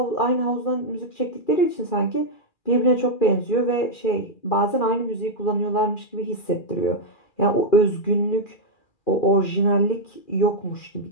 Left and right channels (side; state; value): right; late; 2.4 ms